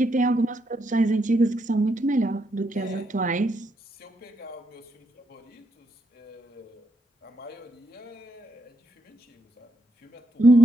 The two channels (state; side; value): normal; both; correlation 0.78